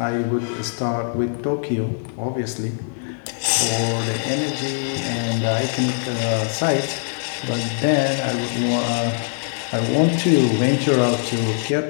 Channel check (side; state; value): right; silent; digital silence